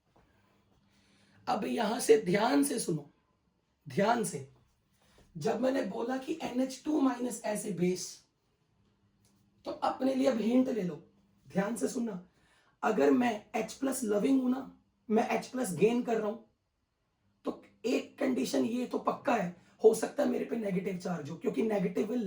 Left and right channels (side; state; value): both; identical; correlation 1.00